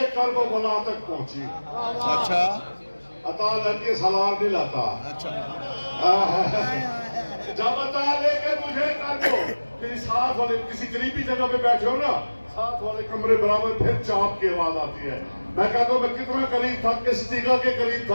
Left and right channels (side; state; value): both; inverted; correlation -1.00